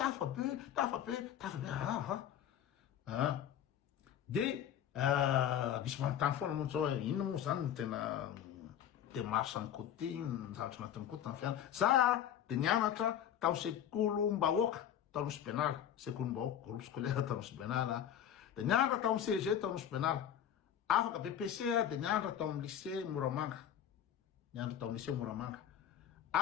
be de misy manontany foana moa zao hoe inona moa zany tena démarche ny côté ny zavatra anatin'ny côté ny fianana za de nianatra tamy sekolom-bahoaka tanosy benala sekolom-bahoaka groupe scolaire tanosy benala de nianatra tamy CG tanosy benala afaka BPC de nianatra tamy lycée Moramanga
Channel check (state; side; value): quieter; right; 9.9 dB